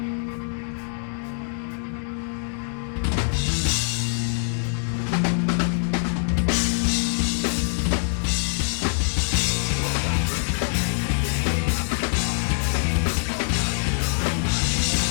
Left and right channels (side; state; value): right; silent; digital silence